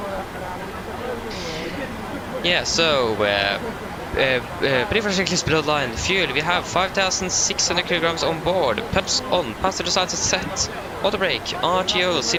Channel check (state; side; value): identical; both; correlation 1.00